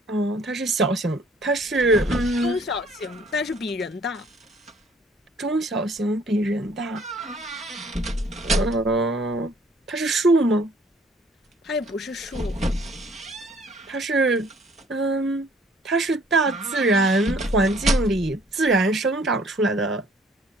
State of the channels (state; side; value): normal; both; correlation 0.58